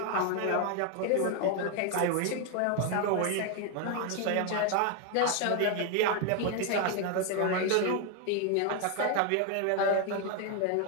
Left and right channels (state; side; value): different; both; correlation 0.01